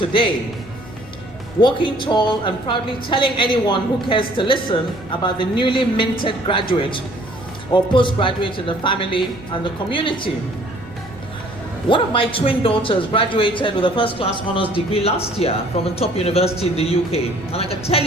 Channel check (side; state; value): right; noise; rumble, 24 dB below the sound